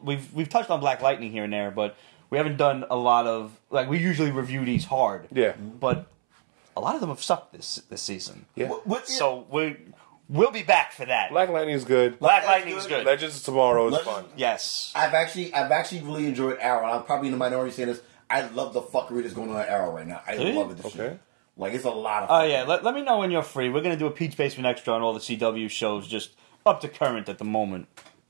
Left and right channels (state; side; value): silent; left; 61 dB below the other